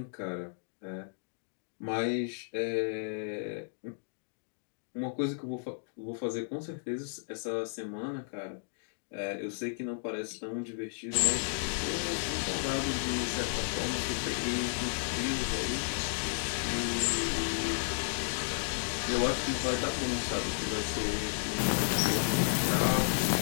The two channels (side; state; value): right; silent; digital silence